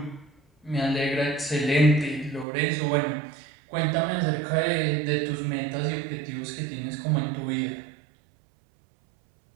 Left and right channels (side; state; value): left; drops out; at 2.5 s